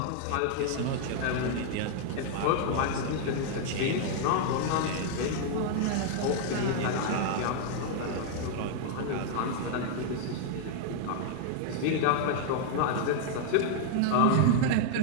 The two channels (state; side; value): different; both; correlation 0.00